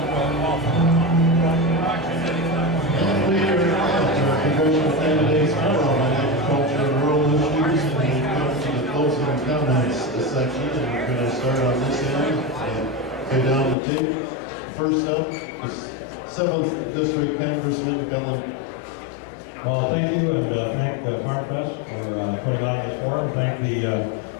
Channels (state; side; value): drops out; right; at 13.8 s